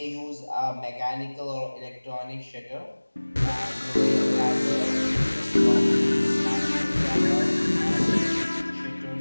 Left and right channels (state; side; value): inverted; both; correlation -1.00